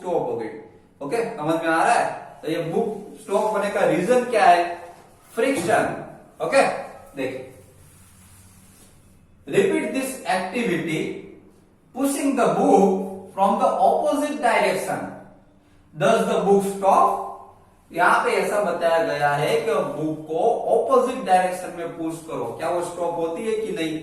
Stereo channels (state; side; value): identical; both; correlation 1.00